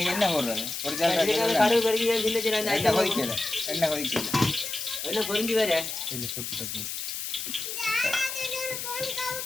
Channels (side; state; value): left; noise; hiss, 5 dB below the sound